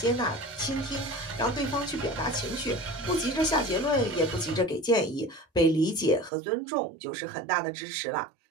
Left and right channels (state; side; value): drops out; left; at 6.3 s